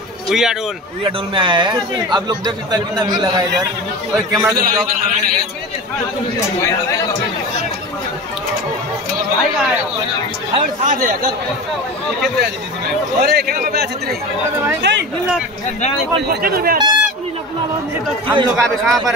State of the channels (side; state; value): both; normal; correlation 0.30